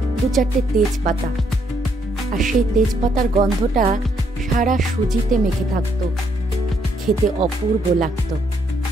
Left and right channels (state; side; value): normal; both; correlation 0.72